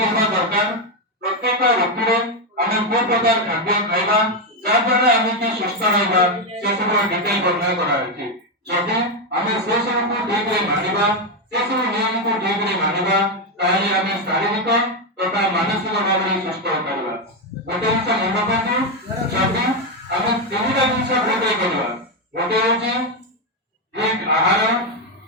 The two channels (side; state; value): both; normal; correlation 0.06